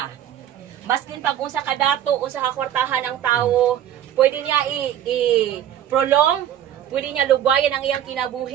Maskin pag unsa ka dato, unsa ka kwartahan ang tawo, pwede niya i-prolong, pwede niya lugwayan ang iyang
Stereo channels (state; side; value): quieter; left; 10.8 dB